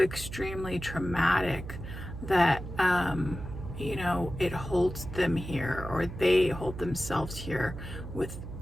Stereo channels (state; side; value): noise; right; hum, 10 dB below the sound